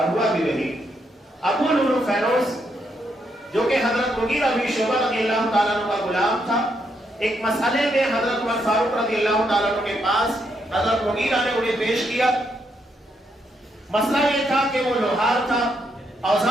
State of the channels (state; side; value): normal; both; correlation 0.78